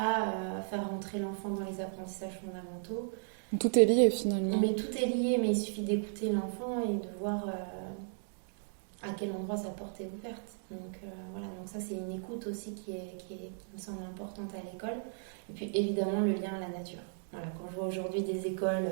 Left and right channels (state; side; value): silent; left; digital silence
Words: faire rentrer l'enfant dans les apprentissages fondamentaux. Tout est lié, finalement. Mais tout est lié, mais il suffit d'écouter l'enfant et de voir à quel endroit sa porte est ouverte. Donc voilà, donc ça c'est une écoute aussi qui me semble importante à l'école. Et puis évidemment le lien à la nature. Voilà, quand je vois aujourd'hui des écoles